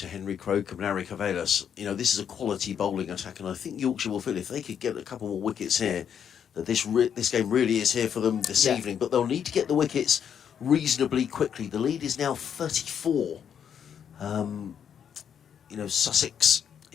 to Henry Crocombe and Ari Cavelas, this is a quality bowling attack, and I think Yorkshire will feel if they could get a couple more wickets here, that this game really is here for them this evening. But they'll need to get the wickets reasonably quickly. The lead is now 34. Sussex,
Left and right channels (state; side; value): quieter; right; 8.3 dB